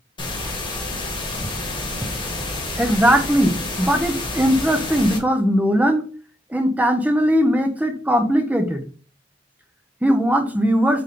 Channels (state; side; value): normal; both; correlation 0.81